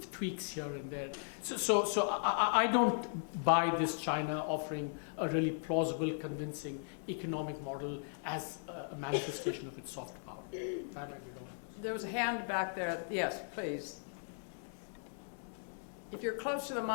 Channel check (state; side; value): silent; right; digital silence